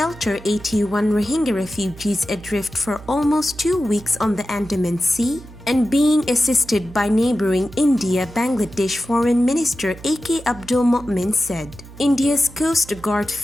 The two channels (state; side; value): noise; right; hum, 18 dB below the sound